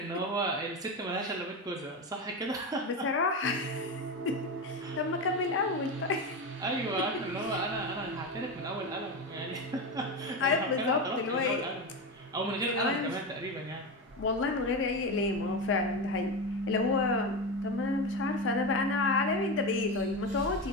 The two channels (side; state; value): both; normal; correlation 0.18